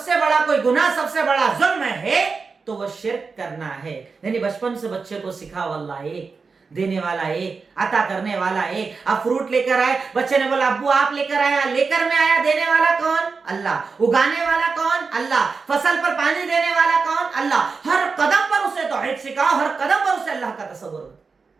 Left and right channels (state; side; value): quieter; left; 4.8 dB